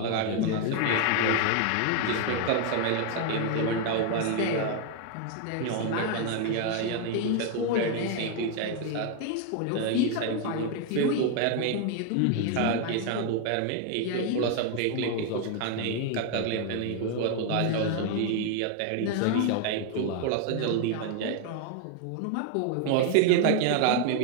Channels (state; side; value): different; both; correlation 0.01